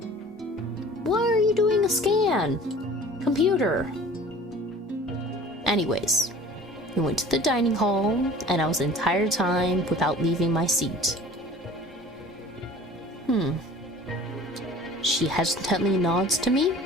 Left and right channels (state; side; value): normal; both; correlation 0.45